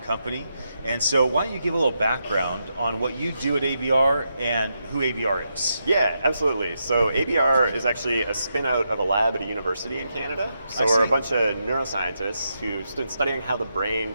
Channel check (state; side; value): inverted; both; correlation -0.84